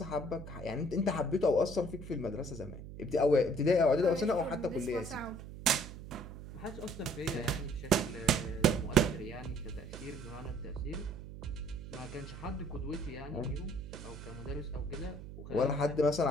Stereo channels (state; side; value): noise; right; hum, 12 dB below the sound